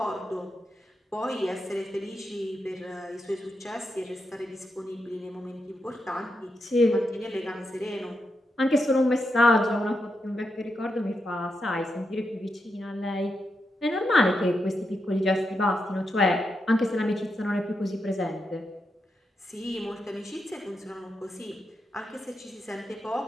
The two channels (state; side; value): normal; both; correlation 0.85